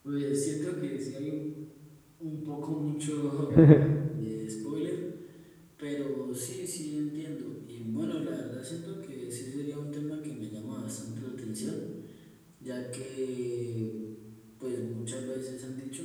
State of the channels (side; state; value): both; identical; correlation 1.00